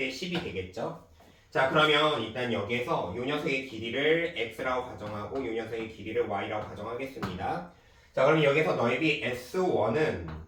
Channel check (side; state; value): both; identical; correlation 1.00